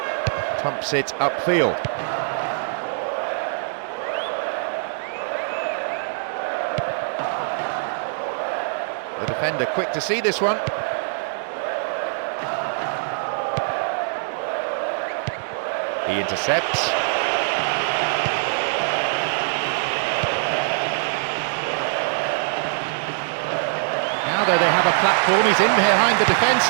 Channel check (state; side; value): silent; left; digital silence